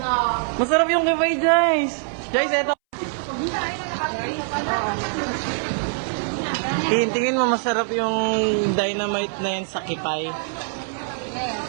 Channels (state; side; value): silent; left; 63 dB below the other